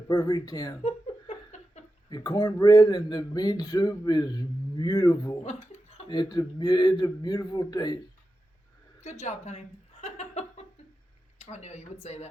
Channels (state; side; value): normal; both; correlation 0.91